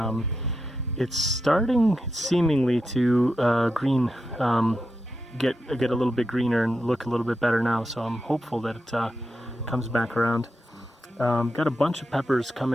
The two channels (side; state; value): both; normal; correlation 0.87